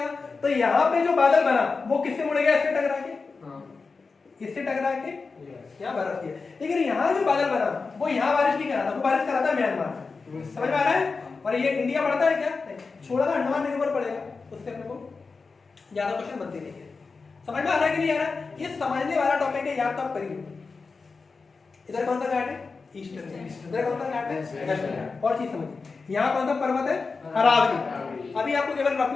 तो यहाँ पे जो बादल बना वो किससे मुड़ेगा? इससे टकरा के, इससे टकरा के यहाँ बरस गया। लेकिन यहाँ जो बादल बना वो यहाँ बारिश नहीं करा था, वो बारिश करा था म्यांमार। समझ में आ रहा है? और ये इंडिया पड़ता है क्या? छोड़ा था अंडमान निकोबार पड़ेगा, उससे अपने को ज्यादा क्वेश्चन बनते नहीं है। समझ में आ रहा है कि नहीं आ रहा है? ये समझने वाला टॉपिक है, याद तो आप करिए। इधर कौन सा घाट है? ईस्टर्न। इधर कौन सा घाट है? वेस्टर्न। और चीज समझिए, यहाँ कौन सा पर्वत है? अरावली। अभी आपको केवल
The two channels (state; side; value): quieter; right; 4.4 dB